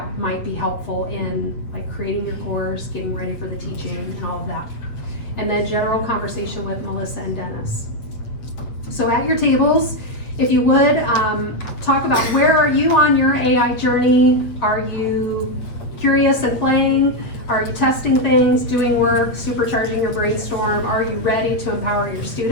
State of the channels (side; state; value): right; late; 8.1 ms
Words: might be helpful in like creating your course, getting ready for the teaching and all of that. And then general conversation with Melissa and Dennis. So at your tables, if you would, talk about where are you on your AI journey? Are you curious and playing? Are you testing things, doing work, supercharging your brainstorm? Are you ready to empower your